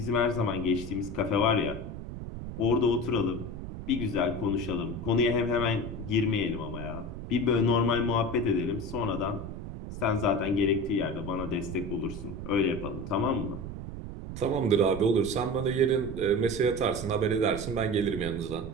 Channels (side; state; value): right; noise; rumble, 8 dB below the sound